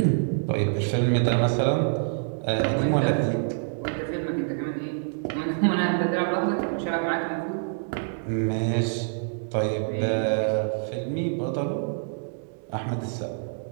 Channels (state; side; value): silent; left; 61 dB below the other